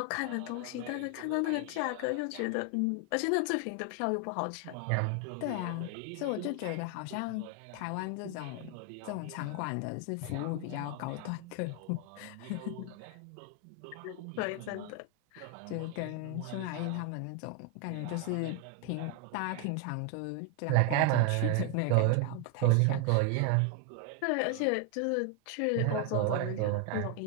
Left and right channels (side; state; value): both; different; correlation 0.01